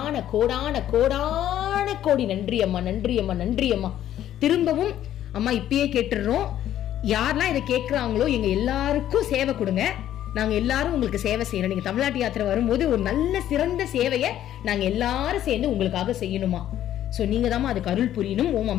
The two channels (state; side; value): quieter; right; 11.7 dB